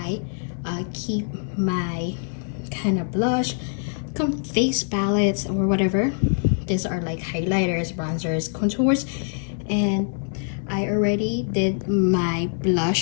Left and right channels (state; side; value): silent; right; 60 dB below the other